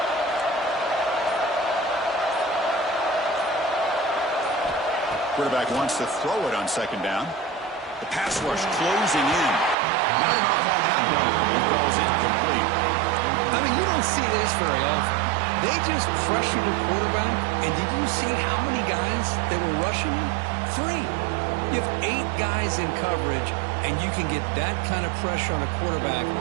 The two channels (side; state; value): left; drops out; at 9.8 s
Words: Quarterback wants to throw it on 2nd down. The pass rush closing in. Not enough on that one. He falls incomplete. I mean, you don't see this very often. They just pressured the quarterback, and did you see how many guys that were rushing him? 3. You have 8 guys in coverage, and you can get that kind of pressure on a quarterback